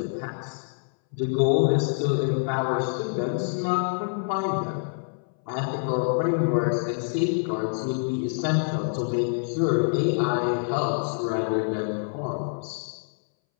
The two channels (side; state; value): right; silent; 61 dB below the other